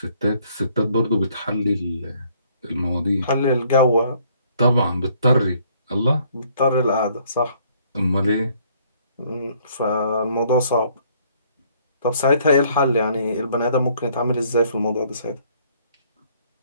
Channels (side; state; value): both; inverted; correlation -0.63